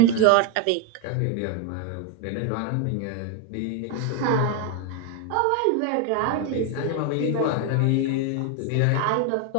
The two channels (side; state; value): both; different; correlation 0.01